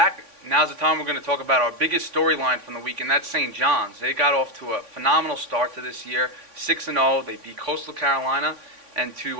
Now's the time we're going to talk about our biggest storyline from the week, and that's St. John's. They got off to a phenomenal start to this year, 6-0. They beat Coastal Carolina, and to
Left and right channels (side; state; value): left; late; 3.5 ms